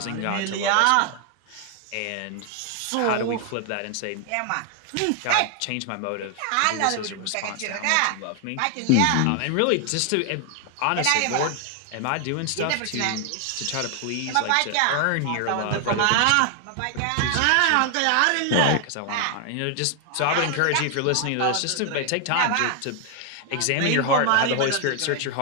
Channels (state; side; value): different; both; correlation 0.00